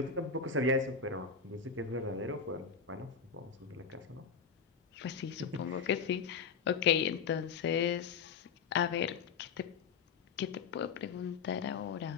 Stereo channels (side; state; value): right; quieter; 5.9 dB